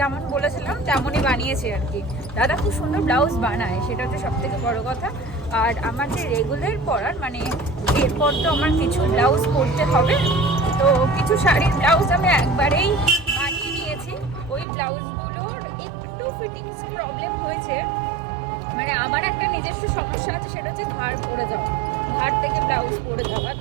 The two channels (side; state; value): left; drops out; at 14.7 s